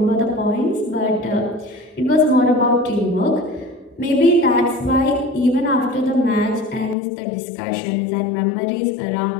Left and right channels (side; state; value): right; drops out; at 7.0 s